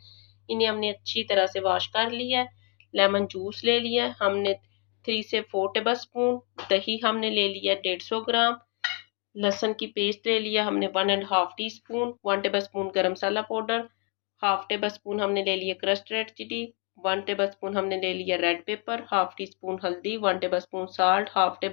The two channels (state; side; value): quieter; right; 36.1 dB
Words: इन्हें हमने अच्छी तरह से वॉश कर लिया है। लेमन जूस ले लिया है हमने 3 से 4 टेबल स्पून। दही हमने ले लिया 150 ग्राम। लहसुन की पेस्ट ले लिया हमने 1.5 tea spoon. 1 tablespoon garam masala powder, half tablespoon हमने ले लिया crushed red chilli, 1 tablespoon हमने ले लिया red pepper, half teaspoon हल्दी, 1 tablespoon salt, half